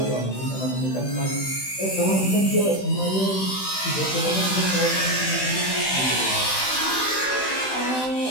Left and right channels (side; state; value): right; late; 16 ms